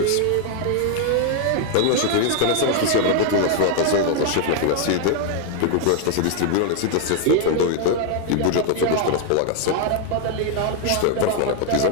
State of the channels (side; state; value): both; different; correlation 0.00